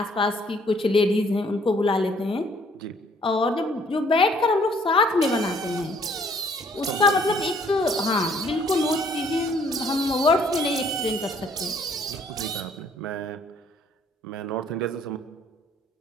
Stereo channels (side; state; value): both; normal; correlation 0.62